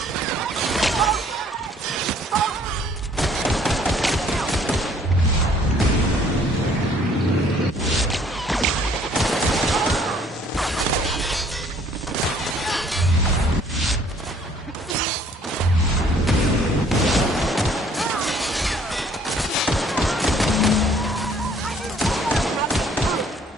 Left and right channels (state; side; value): normal; both; correlation 0.59